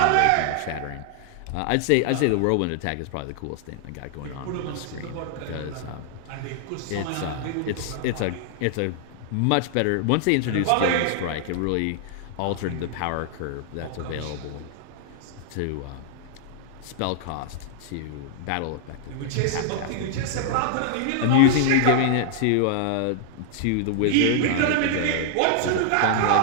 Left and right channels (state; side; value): different; both; correlation -0.01